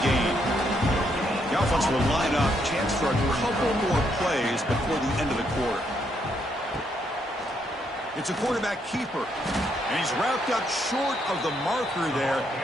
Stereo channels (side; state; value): both; normal; correlation 0.75